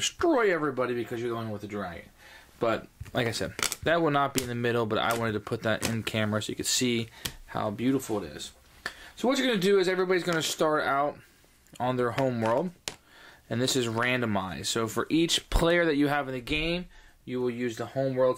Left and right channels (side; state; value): both; identical; correlation 1.00